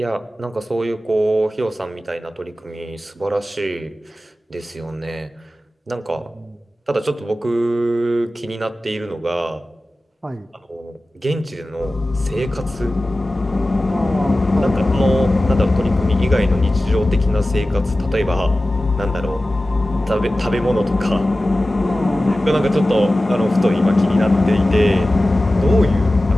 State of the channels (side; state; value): both; normal; correlation 0.95